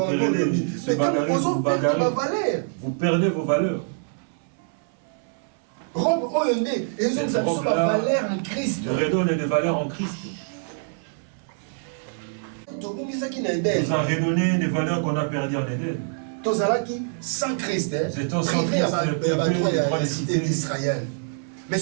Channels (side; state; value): left; silent; 59 dB below the other